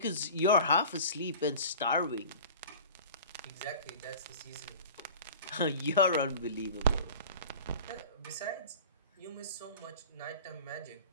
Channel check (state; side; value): inverted; both; correlation -0.38